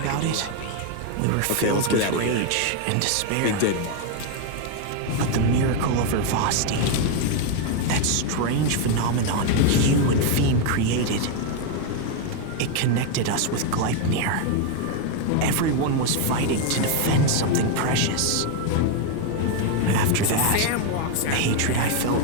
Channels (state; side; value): different; both; correlation 0.01